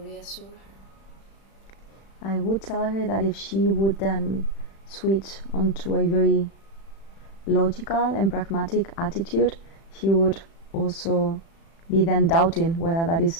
her? I would tell her that if she would then switch onto a very logical and pragmatic attitude, she would also be then doubting whether that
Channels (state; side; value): late; right; 36 ms